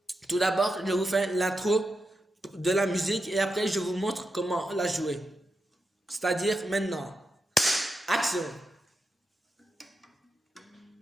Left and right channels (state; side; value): normal; both; correlation 0.88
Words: tout d'abord je vous fais l'intro de la musique et après je vous montre comment la jouer. C'est-à-dire maintenant. Action!